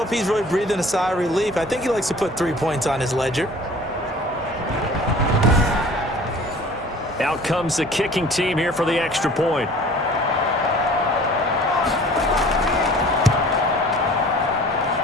he's really breathing a sigh of relief. I think he likes to put 3 points on his ledger. Out comes the kicking team here for the extra point.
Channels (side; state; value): both; normal; correlation 0.47